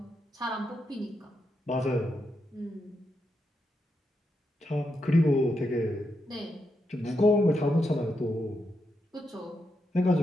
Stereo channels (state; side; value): normal; both; correlation 0.84